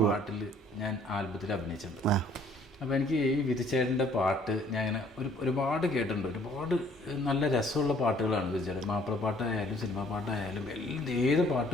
പാട്ടിൽ ഞാൻ ആൽബത്തിൽ അഭിനയിച്ചിട്ടുണ്ട്. അപ്പോൾ എനിക്ക് ഈ വിധിച്ചേട്ടൻ്റെ പാട്ട് ഞാൻ ഇങ്ങനെ ഒരുപാട് കേട്ടിട്ടുണ്ട്. ഒരുപാട് നല്ല രസമുള്ള പാട്ടുകളാണ് വിധിച്ചേട്ടൻ. മാപ്പിളപ്പാട്ടായാലും സിനിമാ പാട്ടായാലും ഏത്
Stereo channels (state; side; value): normal; both; correlation 0.59